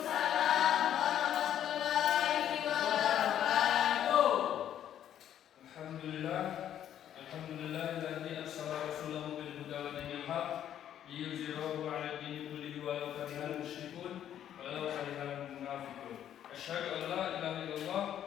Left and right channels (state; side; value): quieter; right; 10.5 dB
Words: warahmatullahi wabarakatuh. Alhamdulillah, alladzi arsala rasulahu bil huda wa dinil haq liyuzhirahu 'ala ad-dini kullihi walau karihal musyrikun walau karihal munafiqun. Asyhadu an la ilaha illallah